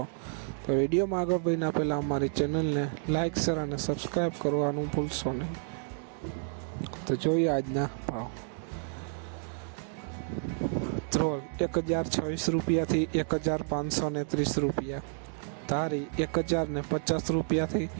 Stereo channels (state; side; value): silent; left; 57 dB below the other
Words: તો વિડીયોમાં આગળ વધીના પહેલાં અમારી ચેનલને લાઇક શેર અને સબસ્ક્રાઈબ કરવાનું ભૂલશો નહીં। તો જોઈએ આજના ભાવ। ધ્રોલ 1026 રૂપિયાથી 1530 રૂપિયા, ધારી 1050 રૂપિયાથી